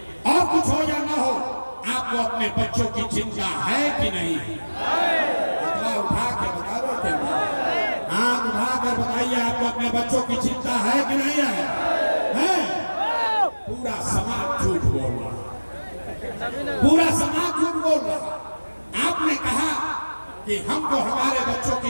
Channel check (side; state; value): both; inverted; correlation -1.00